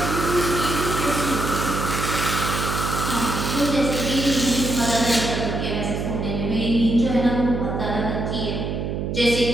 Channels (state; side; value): noise; right; hum, 3 dB below the sound